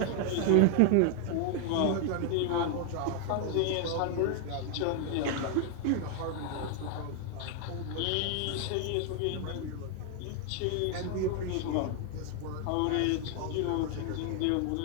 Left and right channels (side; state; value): both; different; correlation 0.00